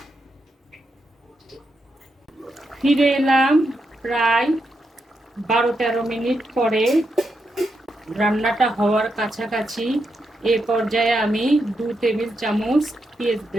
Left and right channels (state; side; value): normal; both; correlation 0.84